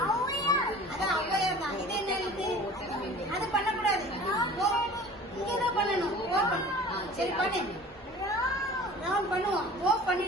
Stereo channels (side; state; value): both; normal; correlation 0.43